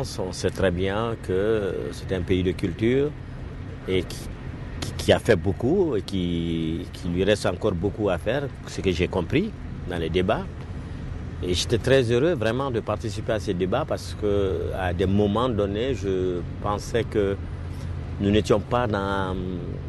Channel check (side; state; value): both; identical; correlation 1.00